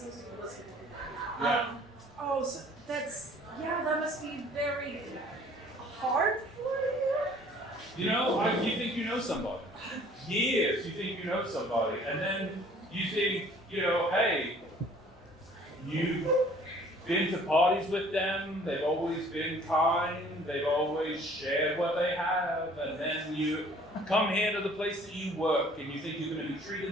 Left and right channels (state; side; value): normal; both; correlation 0.54